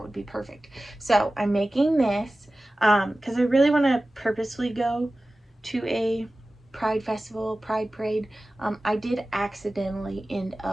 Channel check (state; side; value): normal; both; correlation 0.96